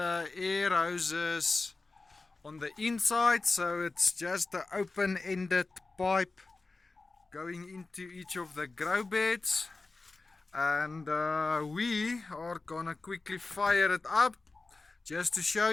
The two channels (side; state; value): right; quieter; 3.6 dB